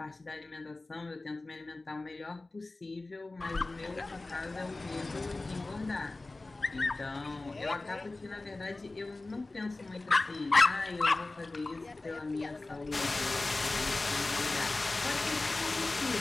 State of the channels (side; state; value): right; quieter; 3.1 dB